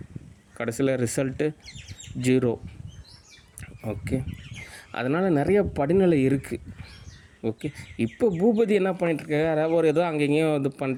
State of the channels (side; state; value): both; identical; correlation 1.00